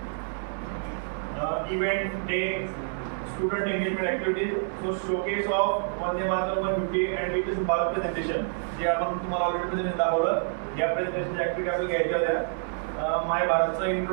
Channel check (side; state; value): left; silent; digital silence